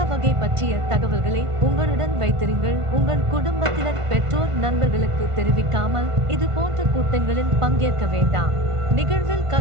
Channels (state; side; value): late; left; 1.5 ms